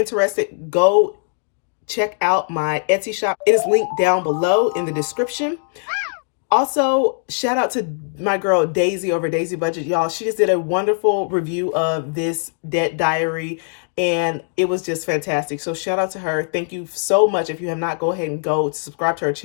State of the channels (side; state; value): right; silent; digital silence